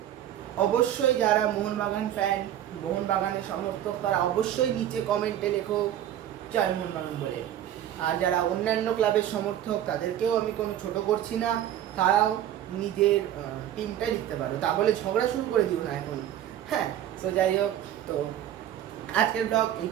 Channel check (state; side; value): quieter; left; 11.4 dB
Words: অবশ্যই যারা মোহনবাগান ফ্যান, মোহনবাগানের সমর্থক, তারা অবশ্যই নিচে কমেন্টে লেখো জয় মোহনবাগান বলে। আর যারা অন্যান্য ক্লাবের সমর্থক, তাদেরকেও আমি কোনো ছোট করছি না, তারাও নিজের টিমটাই লিখতে পারো। তা বলে ঝগড়া শুরু করে দিও না এখন। হ্যাঁ, তো যাই হোক, তো আজকের ব্লগ এই